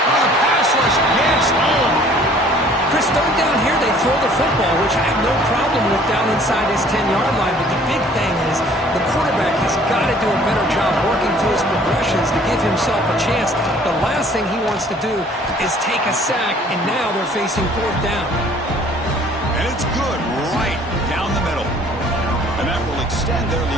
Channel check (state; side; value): normal; both; correlation 0.55